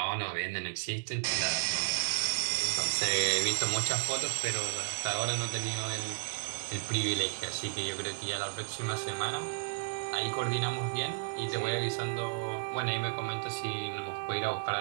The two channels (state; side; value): silent; left; digital silence